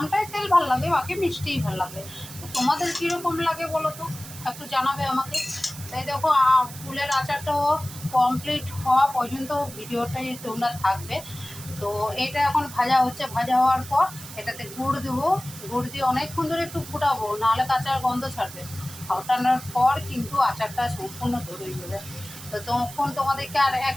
তেল ভালো লাগে, বাকি মিষ্টিই ভালো লাগে। তো তোমাদের কীরকম লাগে বলো তো, একটু জানাবে আমাকে। তাই দেখো, ফুলের আচারটাও কমপ্লিট হওয়া পর্যন্ত ভিডিওটাই তোমরা থাকবে। তো এটা এখন ভাজা হচ্ছে, ভাজা হওয়ার পর এটাতে গুড় দেবো। গুড় দিয়ে অনেকক্ষণ ধরে একটু ফুটাবো, নাহলে কাঁচার গন্ধ ছাড়বে। ফুটানোর পর কিন্তু আচারটা সম্পূর্ণ ধরে যাবে। তো তখন তোমাদেরকে আর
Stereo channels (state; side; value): noise; right; hiss, 14 dB below the sound